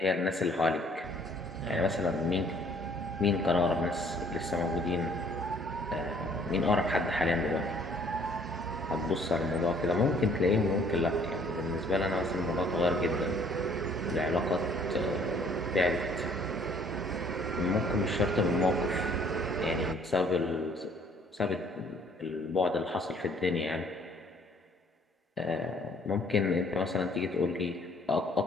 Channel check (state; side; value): normal; both; correlation 0.59